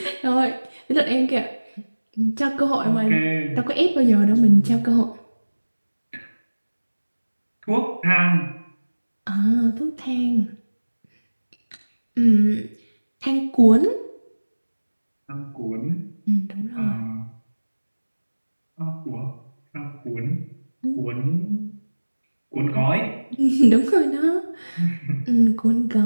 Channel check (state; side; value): inverted; both; correlation -1.00